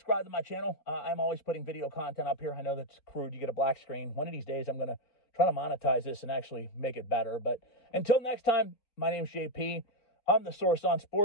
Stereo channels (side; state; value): right; late; 4.1 ms